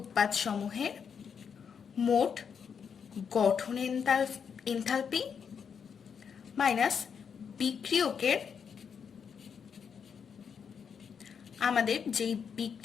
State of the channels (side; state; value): right; quieter; 6.9 dB